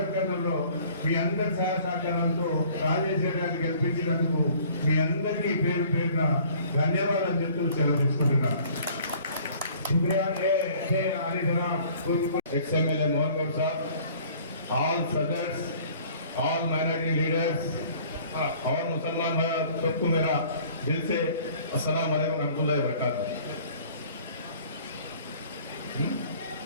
కర్నూలులో మీ అందరి సహాయ సహకారాలతో రాజేశ్వర గారిని గెలిపించినందుకు మీ అందరికీ పేరు పేరున ధన్యవాదాలు చెప్తూ సెలవు తీసుకుంటున్నాను. शुक्रिया अली जनाब XMLA मोहन गौर साहब, ऑल सदर्स, ऑल माइनॉरिटी लीडर्स और मुसलमान भाई सबको मेरा दिल से अस्सलाम वालेकुम रहमतुल्लाहि व बरकातहू।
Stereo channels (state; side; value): inverted; both; correlation -0.53